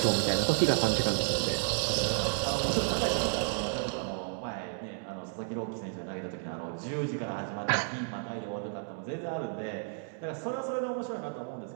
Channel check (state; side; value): silent; left; digital silence